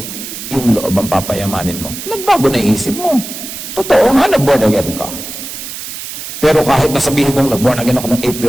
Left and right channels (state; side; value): noise; right; hiss, 9 dB below the sound